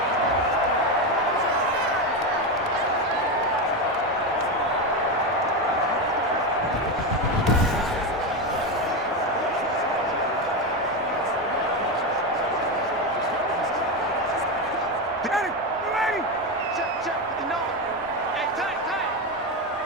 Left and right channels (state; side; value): normal; both; correlation 0.13